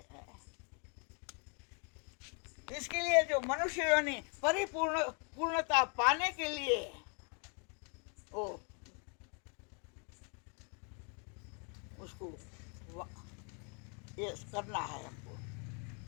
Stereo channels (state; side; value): quieter; right; 38.1 dB